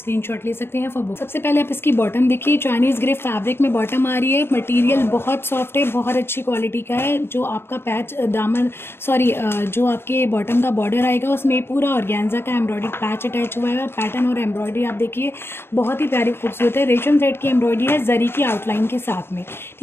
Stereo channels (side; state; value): right; late; 0.11 ms